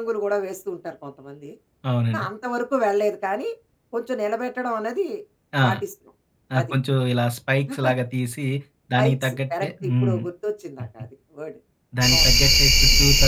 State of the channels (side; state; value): both; identical; correlation 1.00